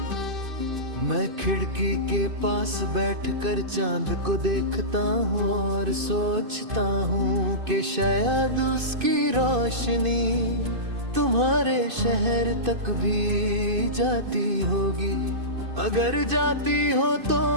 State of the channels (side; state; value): left; late; 2.5 ms